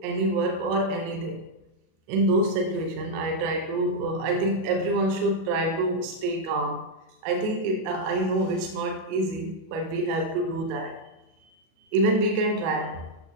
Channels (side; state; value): left; late; 37 ms